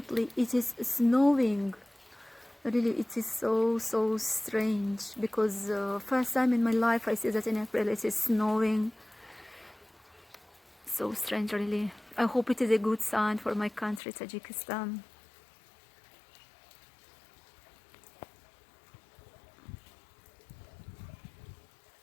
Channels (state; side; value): drops out; right; at 14.0 s